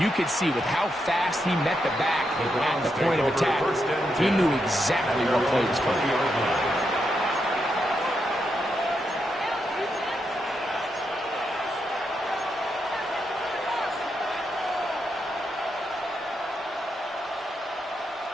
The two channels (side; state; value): both; normal; correlation 0.83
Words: could see with how fast he met the back at the point of attack, he knew exactly what play was coming.